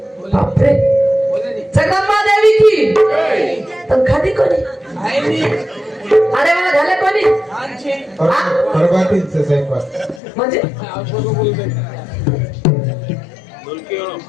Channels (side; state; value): right; drops out; at 10.2 s